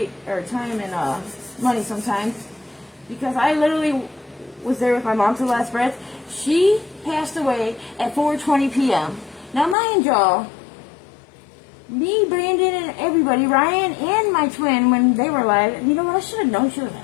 Or time and money sometimes. Because I literally was there with my mom to the last breath. She passed away at 4:20 p.m. Now, mind y'all, me, Brandon, and everybody, Ryan, and my twin, when they were alive, you know what, I should have known she was an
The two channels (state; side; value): drops out; right; at 9.8 s